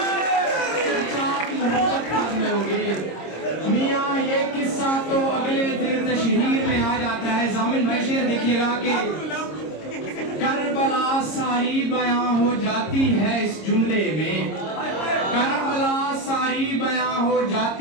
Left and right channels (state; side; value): late; right; 26 ms